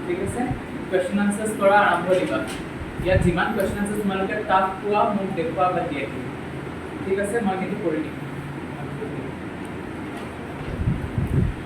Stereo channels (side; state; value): both; identical; correlation 1.00